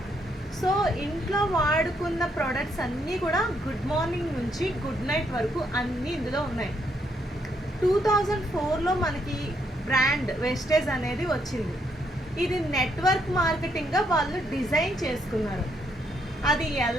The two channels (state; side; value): normal; both; correlation 0.74